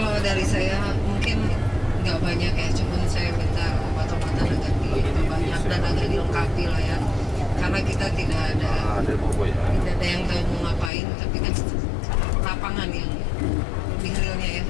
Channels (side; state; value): right; drops out; at 10.9 s